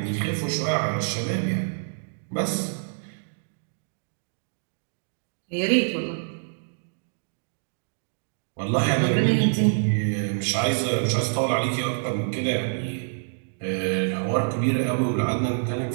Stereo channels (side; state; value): left; silent; digital silence